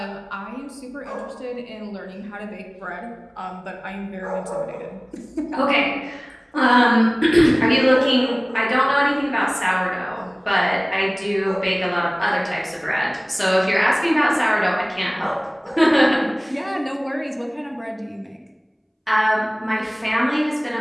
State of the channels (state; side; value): identical; both; correlation 1.00